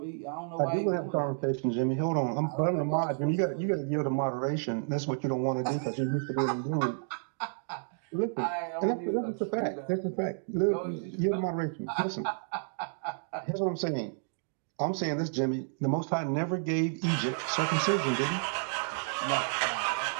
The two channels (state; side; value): silent; left; digital silence